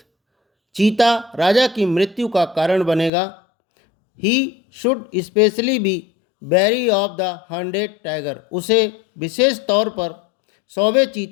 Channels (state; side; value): drops out; right; at 3.1 s